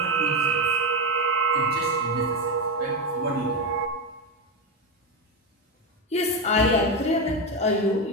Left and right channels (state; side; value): normal; both; correlation 0.12